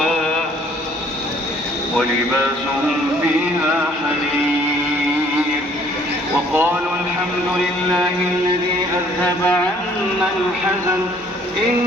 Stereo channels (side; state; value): both; normal; correlation 0.59